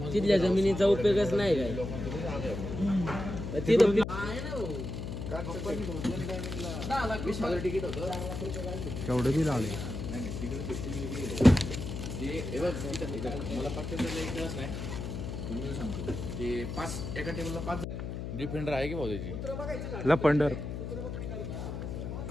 तिथल्या जमिनीचा उपयोगच नाही काय तिथं तिकीट होतं केवढं बिल आले. मला फक्त सांगतो ते 5 एका टेबलला 5 डिफेंडर आहे की भाऊ त्याची लपंडर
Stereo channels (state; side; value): noise; left; hum, 5 dB below the sound